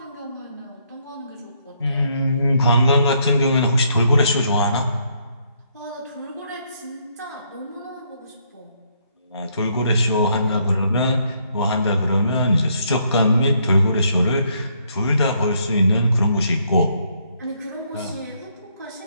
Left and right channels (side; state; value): both; inverted; correlation -0.71